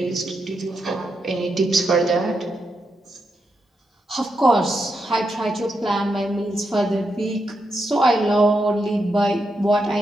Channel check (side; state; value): both; normal; correlation 0.84